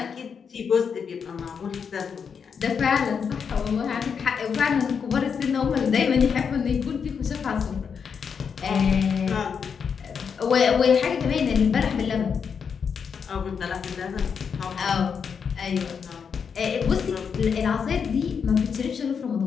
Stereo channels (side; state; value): right; quieter; 6.5 dB